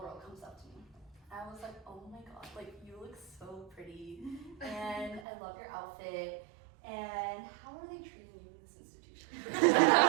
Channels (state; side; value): drops out; left; at 5.2 s